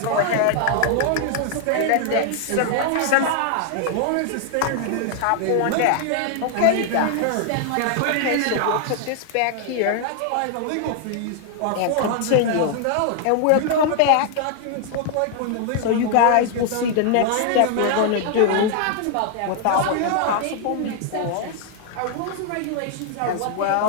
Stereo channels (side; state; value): both; different; correlation 0.00